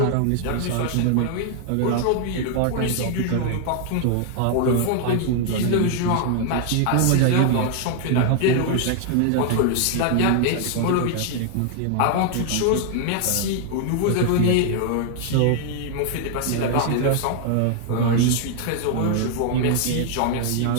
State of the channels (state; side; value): different; both; correlation 0.00